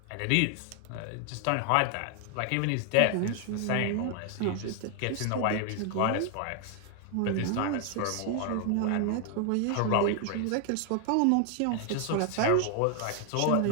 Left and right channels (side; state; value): both; different; correlation 0.00